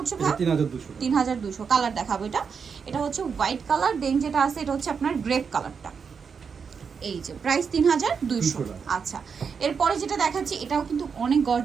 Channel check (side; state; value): left; quieter; 6.1 dB